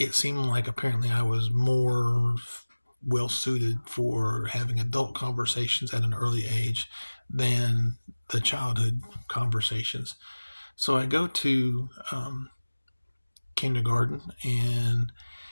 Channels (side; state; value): both; inverted; correlation -1.00